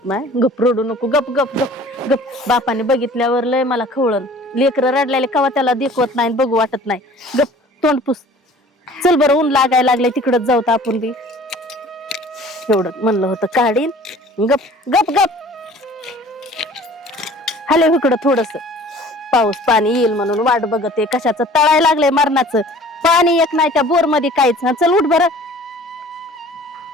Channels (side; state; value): both; normal; correlation 0.48